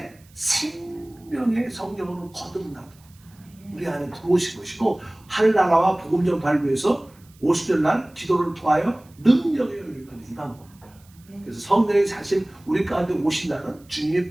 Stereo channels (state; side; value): noise; right; hiss, 29 dB below the sound